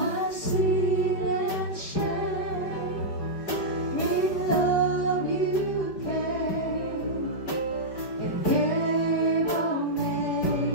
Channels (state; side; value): late; right; 5.1 ms